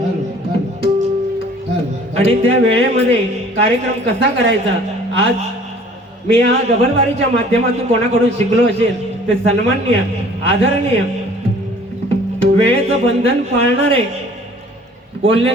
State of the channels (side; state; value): both; normal; correlation 0.52